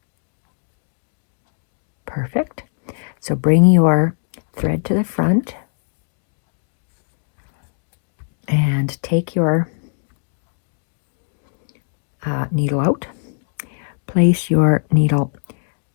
Perfect. So bring your thread to the front and take your needle out. Place your needle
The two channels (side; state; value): right; silent; digital silence